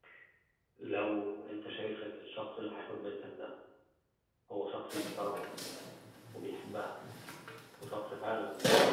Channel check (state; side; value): identical; both; correlation 1.00